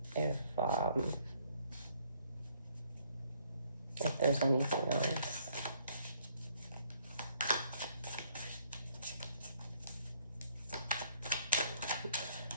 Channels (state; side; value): inverted; both; correlation -0.65